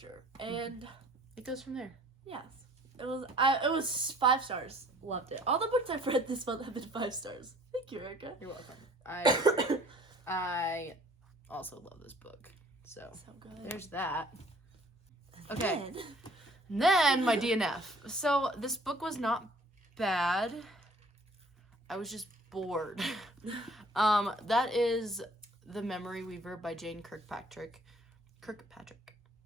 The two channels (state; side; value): normal; both; correlation 0.55